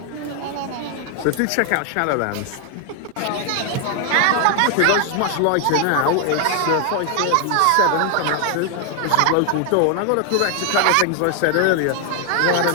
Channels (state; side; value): different; both; correlation 0.00